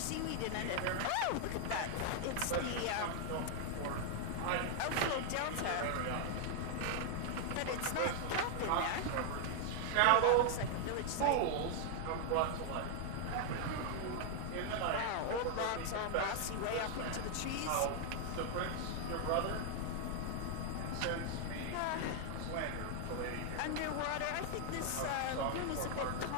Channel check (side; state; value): both; different; correlation 0.00